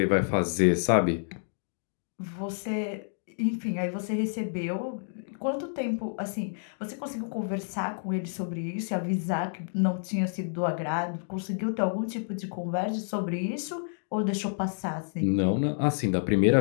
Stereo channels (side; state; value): right; silent; digital silence